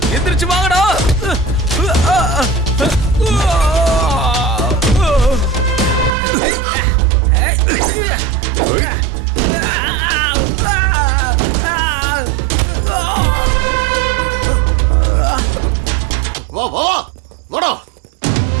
எந்திரிச்சு வாங்கடா. வா வா வா வாடா.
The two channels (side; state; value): left; drops out; at 6.1 s